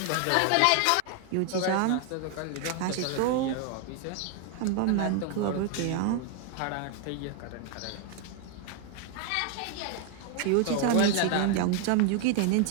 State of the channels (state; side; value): different; both; correlation 0.00